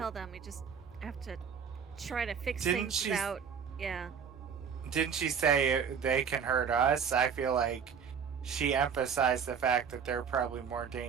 them. We just have to try to fix Didn't things she- without... Yeah. Didn't she say they can hurt us? I feel like she emphasized the fact that they're probably more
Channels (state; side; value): quieter; left; 6.9 dB